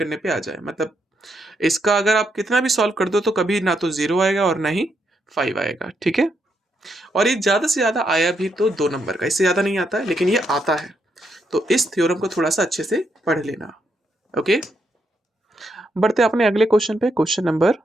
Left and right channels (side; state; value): both; normal; correlation 0.79